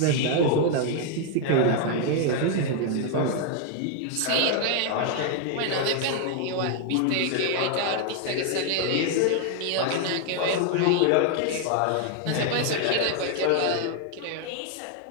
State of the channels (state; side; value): different; both; correlation 0.00